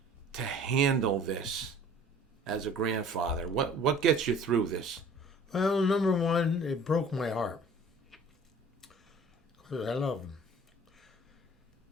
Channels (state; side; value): normal; both; correlation 0.49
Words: to handle this as a grandfather? What gets you through this? Well, number one, it broke my heart because I love him.